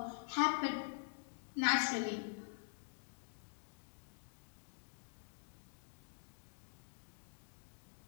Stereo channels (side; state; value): right; silent; digital silence